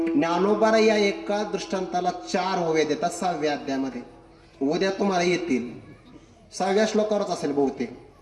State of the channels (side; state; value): both; identical; correlation 1.00